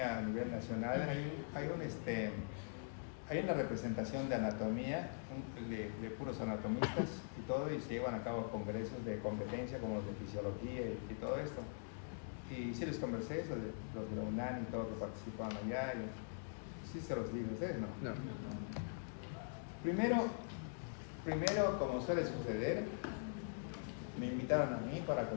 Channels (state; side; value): silent; right; digital silence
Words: a nivel nacional hay una representación de anatomía de puros anatomistas y todo, y se llevan a cabo congresos de competencia como los de fisiología y todo esto. Y sí les conversé eso de los de la UNAM y todos que participaban allá, y sí se los digo, ustedes no. No. Primero, como suele suceder, me invitaron a mí para